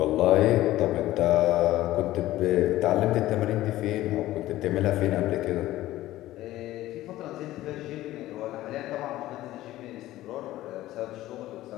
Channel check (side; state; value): right; quieter; 15.5 dB